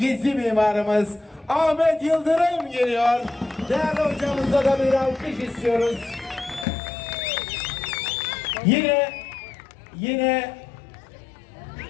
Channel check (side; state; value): right; drops out; at 6.7 s